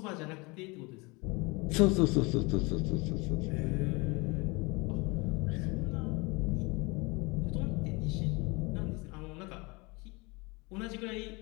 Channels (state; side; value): quieter; right; 26.8 dB